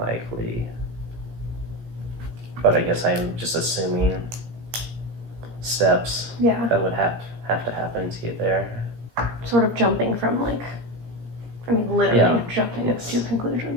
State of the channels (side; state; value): left; late; 17 ms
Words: But I guess I'm just assuming steps that would have to happen to get there. Sort of jumping from literally jumping to